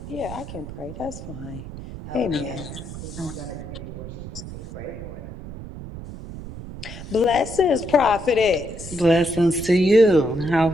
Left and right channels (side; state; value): right; noise; rumble, 11 dB below the sound